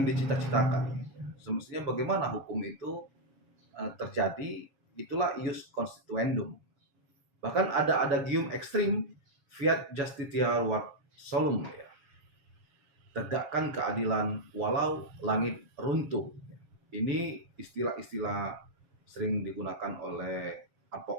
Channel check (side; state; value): left; late; 7.3 ms